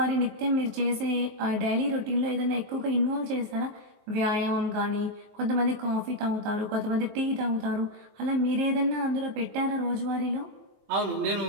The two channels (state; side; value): late; left; 24 ms